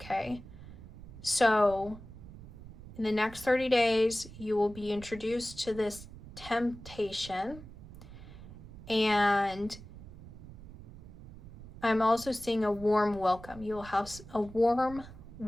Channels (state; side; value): noise; right; rumble, 16 dB below the sound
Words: so in the next 30 days you will be introduced to this temptation, and I'm also seeing a warm welcome. You'll have a warm